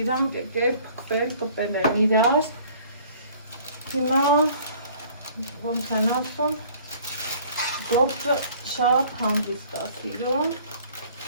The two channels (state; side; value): inverted; both; correlation -0.53